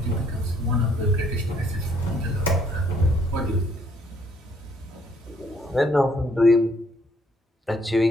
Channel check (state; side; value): normal; both; correlation 0.66